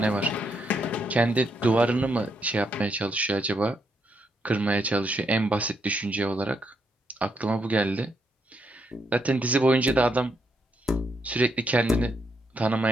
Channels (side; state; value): both; normal; correlation 0.77